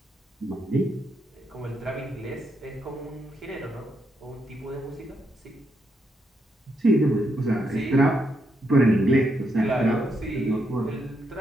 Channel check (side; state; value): both; normal; correlation 0.80